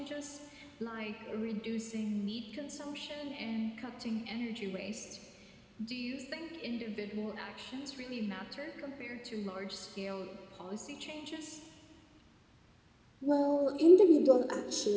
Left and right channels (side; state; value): both; identical; correlation 1.00